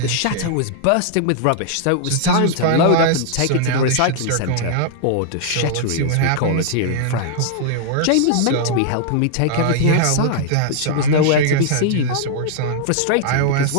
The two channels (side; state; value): both; different; correlation -0.01